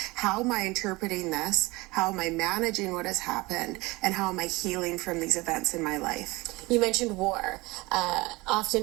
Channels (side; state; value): left; quieter; 22.5 dB